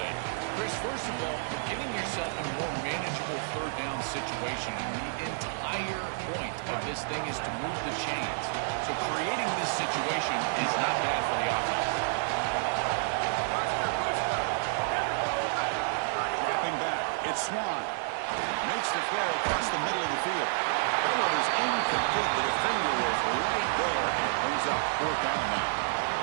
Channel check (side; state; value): left; silent; 58 dB below the other